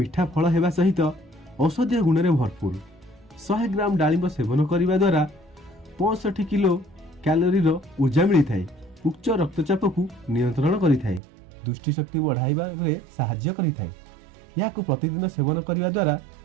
फल हेबा सहित औषधीय गुण रे भरपूर। 100 ग्राम डालिंब सेवन करिबा द्वारा 65 किलो कैलोरी रो ऊर्जा मिली थाए। उच्च रक्तचाप को नियंत्रण करि थाए। दृष्टि शक्ति बढ़ाइबा रे सहाय्य करि थाए। याकु प्रतिदिन सेवन करिबा द्वारा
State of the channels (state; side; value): drops out; left; at 11.2 s